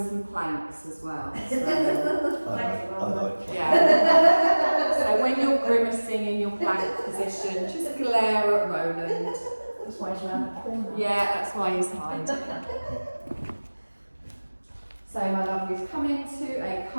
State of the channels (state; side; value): inverted; both; correlation -1.00